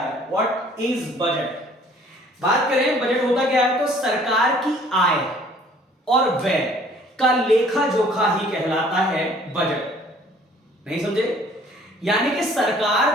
व्हाट इज बजट। बात करें बजट होता क्या है तो सरकार की आय और व्यय का लेखा जोखा ही कहलाता है बजट। नहीं समझे? यानी कि सरकार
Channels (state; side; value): normal; both; correlation 0.56